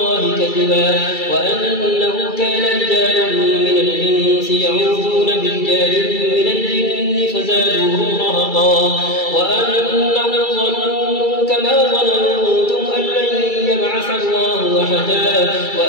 كذبا وأنه كان رجال من الإنس يعوذون برجال من الجن فزادوهم رهقا وأنهم ظنوا كما ظننتم أن لن يبعث الله أحدا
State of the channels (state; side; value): late; right; 2.3 ms